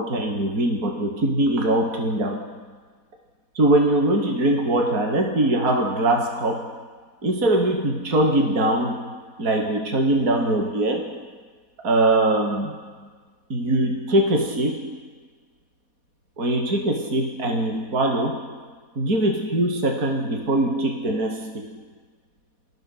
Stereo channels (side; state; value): left; late; 4.1 ms